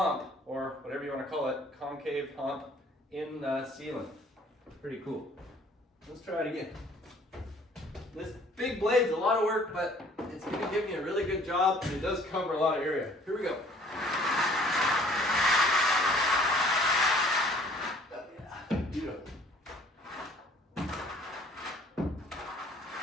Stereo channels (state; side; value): normal; both; correlation 0.55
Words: or whatever you want to call it, concave hump in the ceiling. Pretty cool. Let's try it again. This big blade's a lot of work, but it's going to give me a really good job, and it does cover a lot of area. Here we go. Oh, yeah. Beautiful.